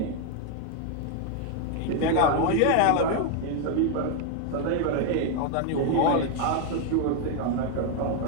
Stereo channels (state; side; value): different; both; correlation 0.01